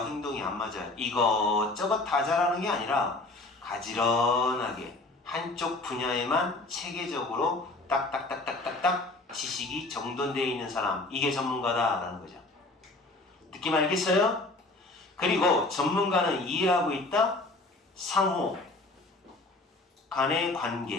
행동이 안 맞아요. 이것저것 다 잘하는 게 아니라 가지런하게 한쪽 분야에만 체계적으로 딱딱딱딱딱딱 지식이 정돈되어 있는 사람, 이게 전문가다라는 거죠. 느낌 알겠어요? 그리고 전문가는 이해하고 있다? 상호 간의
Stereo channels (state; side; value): quieter; right; 3.0 dB